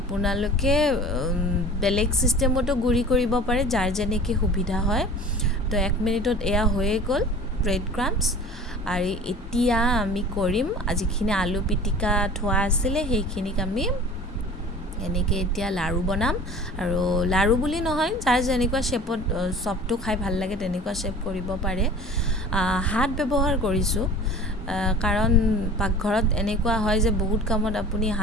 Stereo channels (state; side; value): normal; both; correlation 0.42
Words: বেলেগ ছিষ্টেমতো গুড়ি কৰিব পাৰে, যাৰ যেনেকৈ সুবিধা হয়। তো 1 মিনিটত এয়া হৈয়ে গ'ল ব্ৰেড ক্ৰাম্পছ। আৰু এতিয়া আমি কৰিম, যিখিনি আলু পিটিকা থোৱা আছিলে সেইখিনিক আমি এনেকৈ এতিয়া লাড়ু বনাম। আৰু লাড়ু বুলি নহয়, যাৰ যেনেকুৱা শ্বেপত চপটো খাই ভাল লাগে তেনেকুৱা শ্বেপ কৰিব পাৰে। হাত ব্যৱহাৰ কৰিছোঁ, কাৰণ পাকঘৰত এনেকুৱা হয় যে বহুত কামত আপুনি